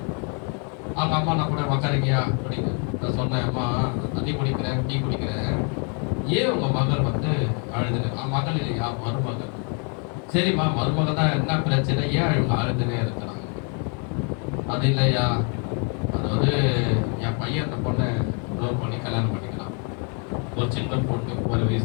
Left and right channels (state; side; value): quieter; right; 38.8 dB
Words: அவங்க அம்மா நான் கூட உக்காரிக்கியா குடிக்க, நான் சொன்னேன் அம்மா தண்ணி குடிக்கிறேன், டீ குடிக்கிறேன், ஏன் உங்க மகள் வந்து அழுதுன்னு? மகள் இல்லையா, மருமகள். சரிம்மா மருமகள் தான், என்ன பிரச்சனை, ஏன் இவங்க அழுதுனே இருக்கிறாங்க? அது இல்லையா, அதாவது என் பையன் அந்த பொண்ணை லவ் பண்ணி கல்யாணம் பண்ணிக்கலாம். ஒரு சின்ன பொண்ணு, 1